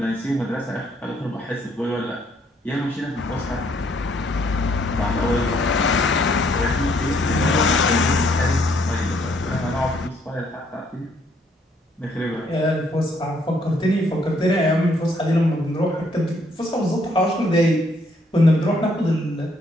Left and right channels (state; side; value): normal; both; correlation 0.68